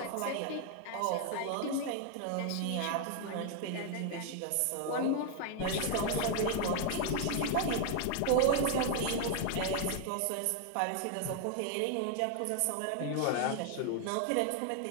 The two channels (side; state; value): both; different; correlation 0.00